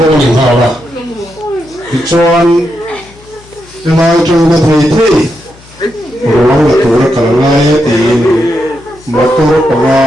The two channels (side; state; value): left; noise; hum, 24 dB below the sound